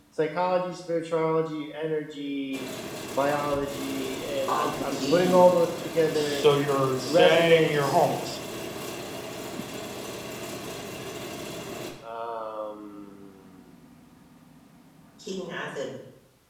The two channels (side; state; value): both; identical; correlation 1.00